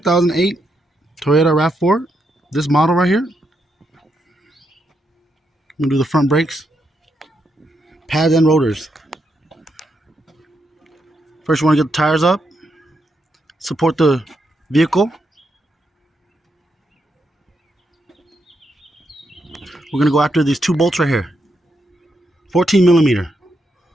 Toyota RAV4. This model right here. I'm going to do the front brakes, pads and rotors. First you want to get the tires up, support the vehicle. We're going to go after these two bolts right here. 14 millimeter.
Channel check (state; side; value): normal; both; correlation 0.81